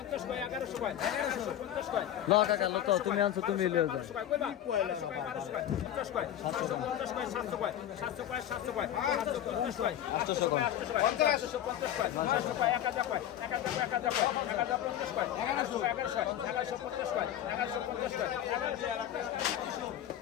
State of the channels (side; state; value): right; quieter; 11.3 dB